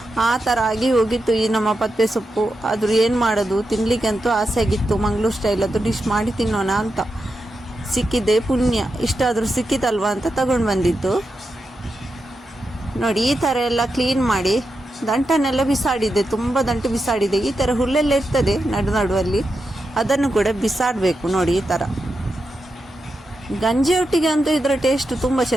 ಆ ಥರ ಆಗಿ ಹೋಗಿತ್ತು ಈ ನಮ್ಮ ಪತ್ಪೆ ಸೊಪ್ಪು. ಆದರೂ ಏನು ಮಾಡೋದು, ತಿನ್ನಲಿಕ್ಕಂತೂ ಆಸೆ ಆಗಿತ್ತು. ಮಂಗಳೂರು ಸ್ಟೈಲದ್ದು ಡಿಶ್ ಮಾಡಿ ತಿನ್ನೋಣ ಅಂತ. ಸಿಕ್ಕಿದೆ ಪುಣ್ಯ, ಇಷ್ಟಾದರೂ ಸಿಕ್ಕಿತಲ್ವಾ ಅಂತ ತಗೊಂಡು ಬಂದಿದ್ದು. ನೋಡಿ, ಈ ಥರ ಎಲ್ಲ ಕ್ಲೀನ್ ಮಾಡಿ ದಂಟನ್ನೆಲ್ಲ ಬಿಸಾಡಿದೆ, ತುಂಬ ದಂಟು ಬಿಸಾಡಿದೆ. ಈ ಥರ ಹುಲ್ಲೆಲ್ಲ ಇರ್ತದೆ ನಡುವಲ್ಲಿ, ಅದನ್ನು ಕೂಡ ಬಿಸಾಡಬೇಕು. ನೋಡಿ, ಈ ಥರ ಗಂಜಿ ಒಟ್ಟಿಗೆ ಅಂತೂ ಇದರ ಟೇಸ್ಟ್ ತುಂಬ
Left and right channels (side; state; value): both; normal; correlation 0.88